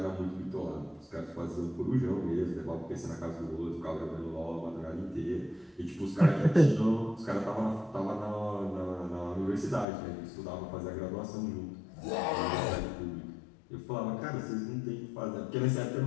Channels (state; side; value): drops out; right; at 9.9 s